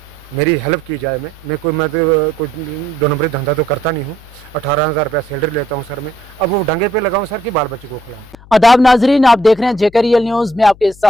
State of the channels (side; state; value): left; noise; hum, 22 dB below the sound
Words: मेरी हेल्प की जाए। मैं कोई 2 नंबरी धंधा तो करता नहीं हूँ। 18,000 रुपया सैलरी लेता हूँ सर मैं। अब वो डंगे पे लगाऊँ सर कि बाल बच्चे को खिलाऊँ। आदाब नाजरीन, आप देख रहे हैं जेकेरियल न्यूज में आपके